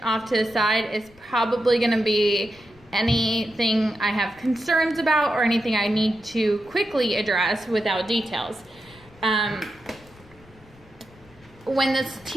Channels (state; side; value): noise; left; rumble, 26 dB below the sound